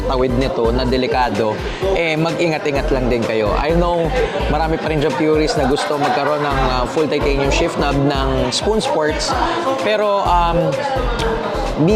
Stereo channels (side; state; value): both; identical; correlation 1.00